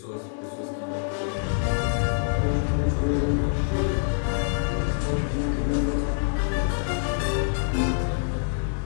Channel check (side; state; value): right; silent; digital silence